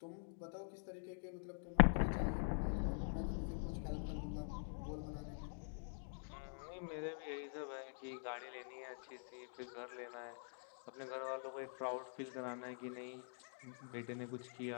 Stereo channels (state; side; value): silent; right; digital silence